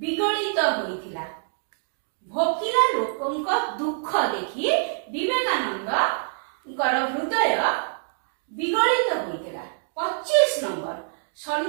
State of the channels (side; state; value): left; silent; digital silence